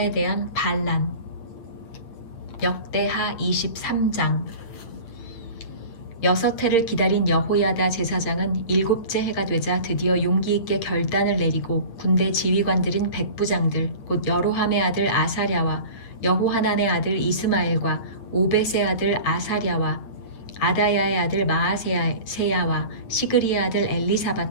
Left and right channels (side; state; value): right; late; 8.9 ms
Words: 대한 반란. 역대하 23장. 6해를 기다린 여호야다 제사장은 7째 해가 되자 드디어 용기 있게 결단을 내리고 군대 지휘관들인 백부장들 곧 여로함의 아들 아사랴와 여호하난의 아들 이스마엘과 오벳의 아들 아사랴와 아다야의 아들 마아세야와 시그리의 아들